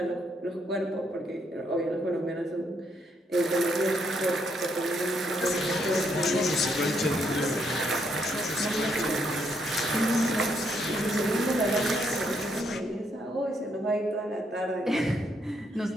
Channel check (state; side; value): normal; both; correlation 0.74